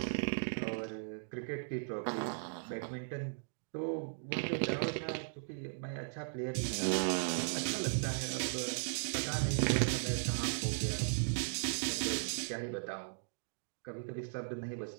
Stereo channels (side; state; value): left; silent; digital silence